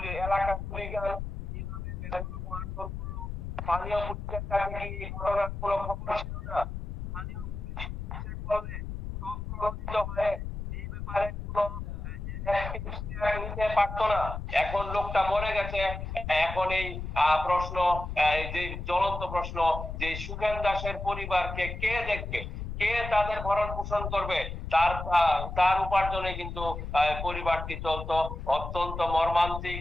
এলাকার হুলিগান স্থানীয় পুলিশের কাছে কি ঘটনার কোনো খবর ছিল না? স্থানীয় বলে প্রভাবিত হয়ে এই ব্যাপারে কোনো নিতে পারতো না। এখন লোকটা মরে গেছে, এখন এই প্রশ্ন, এই যে জ্বলন্ত প্রশ্ন, যে সুখেন দাসের পরিবারকে কে দেখবে, কে তাদের ভরণ পোষণ করবে, তার উপার্জনে কিন্তু পরিবারটি চলতো। অত্যন্ত মর্মান্তিক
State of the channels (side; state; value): left; noise; rumble, 6 dB below the sound